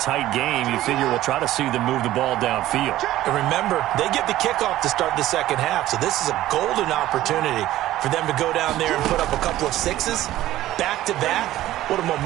tight game, you figure we'll try to see them move the ball downfield. And remember, they get the kickoff to start the second half, so this is a golden opportunity for them to go down there and put up a couple of sixes back-to-back. What a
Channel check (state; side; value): quieter; left; 14.7 dB